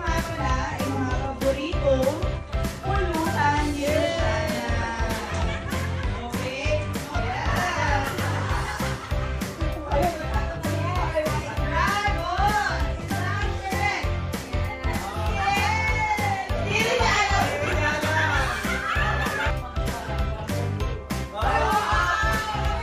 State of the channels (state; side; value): identical; both; correlation 1.00